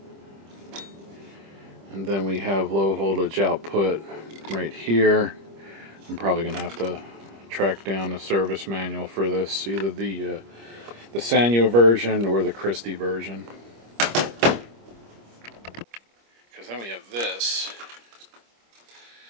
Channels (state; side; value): late; left; 25 ms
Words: and then we have low voltage output right here. I'm probably gonna have to track down the service manual for this, either the Sanyo version or the Christie version. Because then we have this.